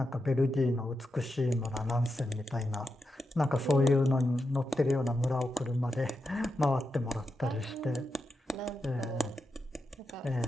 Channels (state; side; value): normal; both; correlation 0.87